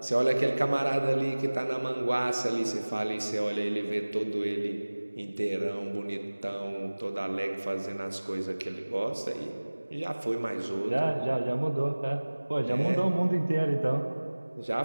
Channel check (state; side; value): inverted; both; correlation -1.00